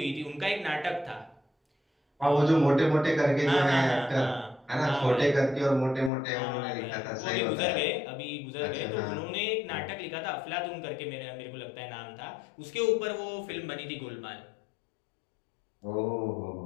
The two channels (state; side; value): drops out; right; at 6.1 s